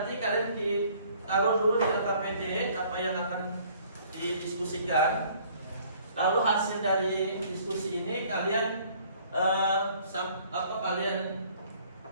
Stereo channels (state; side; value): inverted; both; correlation -0.58